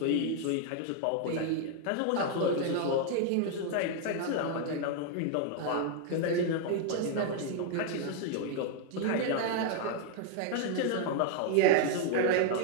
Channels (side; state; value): both; different; correlation 0.00